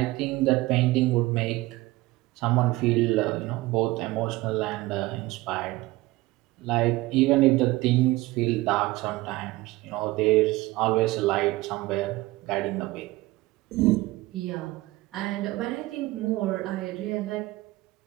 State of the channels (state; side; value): quieter; left; 19.6 dB